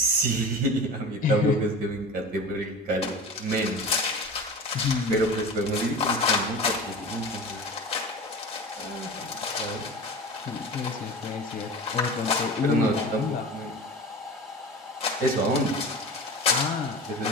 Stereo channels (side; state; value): both; normal; correlation 0.34